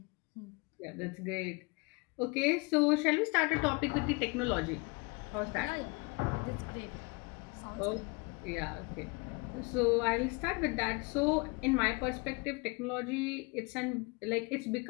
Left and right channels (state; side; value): quieter; right; 28.9 dB